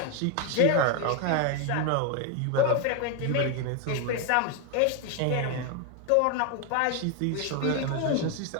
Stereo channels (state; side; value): different; both; correlation 0.01